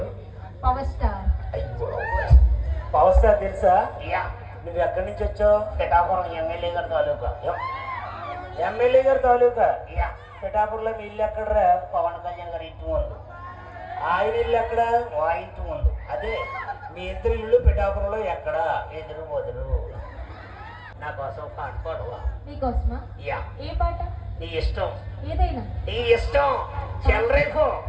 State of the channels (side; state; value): both; identical; correlation 1.00